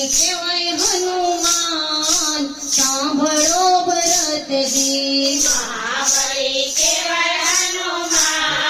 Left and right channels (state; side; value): identical; both; correlation 1.00